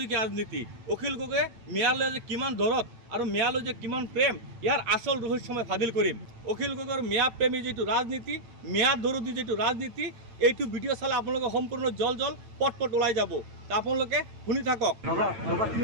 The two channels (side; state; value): left; late; 8.9 ms